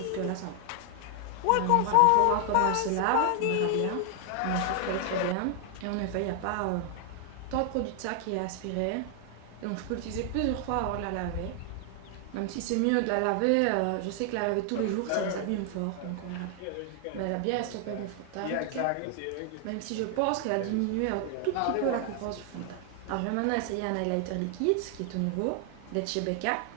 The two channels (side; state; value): both; different; correlation 0.00